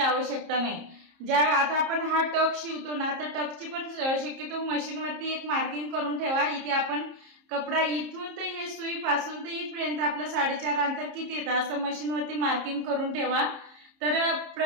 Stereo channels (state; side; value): late; left; 30 ms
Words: नाही। आता आपण हा टक शिवतो ना, तर टकची पण शक्यतो मशीनवरती एक मार्किंग करून ठेवा। इथे आपण कपडा इथून तर हे सुई पासून तर इथपर्यंत आपलं 4.5 अंतर किती येतं असं मशीनवरती मार्किंग करून ठेवा। तर